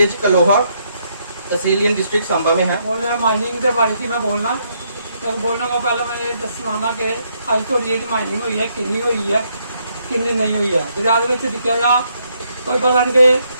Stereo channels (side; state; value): both; inverted; correlation -0.74